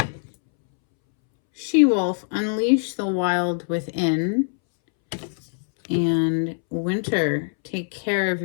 She-wolf, unleash the wild within. And winter, take care of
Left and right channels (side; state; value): right; silent; 63 dB below the other